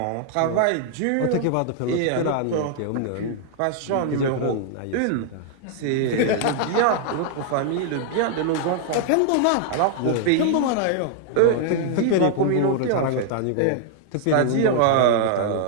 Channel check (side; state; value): both; different; correlation 0.00